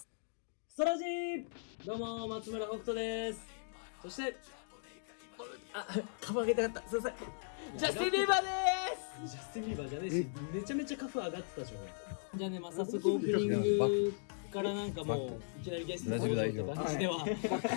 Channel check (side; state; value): right; silent; digital silence